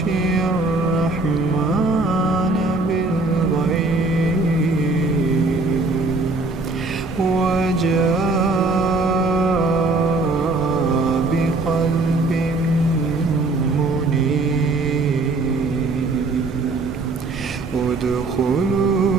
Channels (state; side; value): quieter; left; 3.3 dB